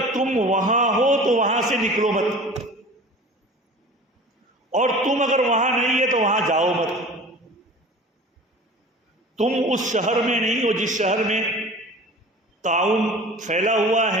تم وہاں ہو تو وہاں سے نکلو مت، اور تم اگر وہاں نہیں ہے تو وہاں جاؤ مت۔ تم اس شہر میں نہیں ہو جس شہر میں تعاون پھیلا ہوا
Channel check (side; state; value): both; normal; correlation 0.41